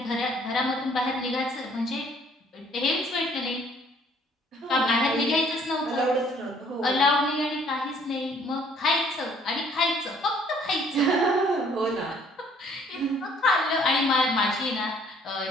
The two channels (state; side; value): normal; both; correlation 0.60